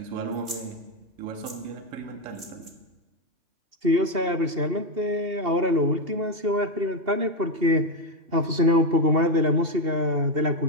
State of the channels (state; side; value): late; left; 3.1 ms